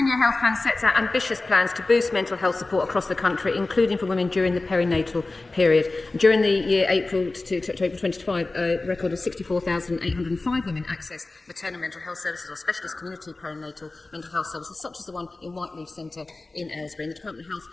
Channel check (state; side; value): quieter; right; 3.2 dB